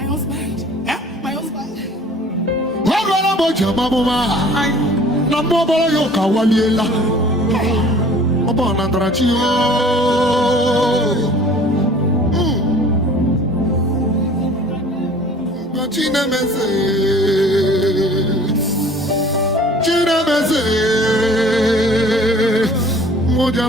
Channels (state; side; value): normal; both; correlation 0.49